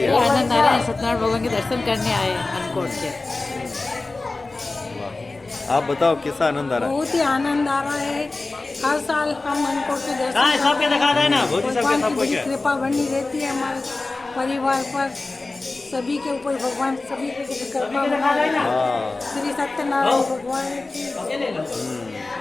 सत्यनारायण भगवान के दर्शन करने आए अन्नकूट के। आप बताओ कैसा आनंद आ रहा है? बहुत ही आनंद आ रहा है। हर साल हम अन्नकूट के दर्शन सबके दिखा देना, भगवान की कृपा बनी रहती है हमारे परिवार पर, सभी के ऊपर भगवान सभी को कृपा बना। श्री सत्यनारायण भगवान की।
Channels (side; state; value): right; quieter; 3.3 dB